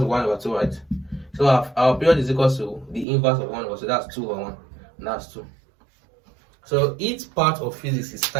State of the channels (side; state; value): left; drops out; at 3.1 s